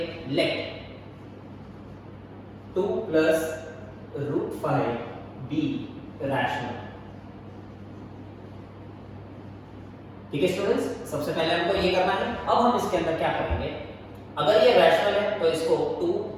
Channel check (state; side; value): identical; both; correlation 1.00